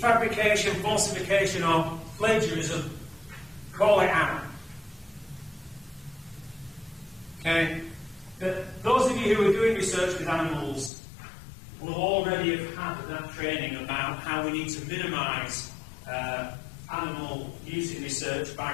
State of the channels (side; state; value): right; drops out; at 10.9 s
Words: falsification, or plagiarism, call it out. Okay? But those of you you who are doing research with animals will already have had that training about how we need to minimise animal use in research